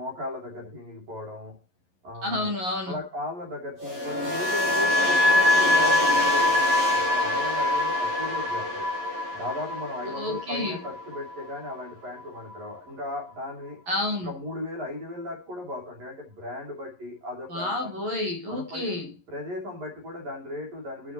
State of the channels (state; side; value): late; left; 11 ms